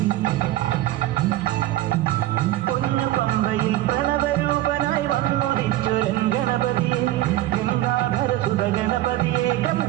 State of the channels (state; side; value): quieter; left; 15.1 dB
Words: പൊന്നു പമ്പയിൽ പ്രണവരൂപനായി വന്നുദിച്ചൊരൻ ഗണപതിയെ ഗംഗാധര സുത ഗണപതിയെ